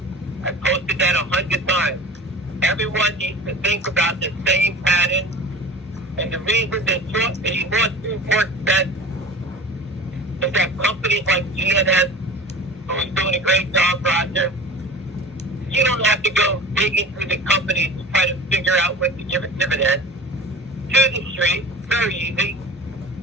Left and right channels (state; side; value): normal; both; correlation 0.37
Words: I posted that 100 times. Everyone needs to think about the same pattern. And the reason that the lawsuit works best is that companies like GNS, who's doing a great job, Roger, you don't have to go digging through the companies to try to figure out what to give a dividend. To the street, very easy.